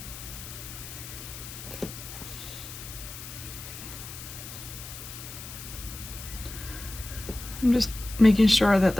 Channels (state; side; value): noise; left; hiss, 12 dB below the sound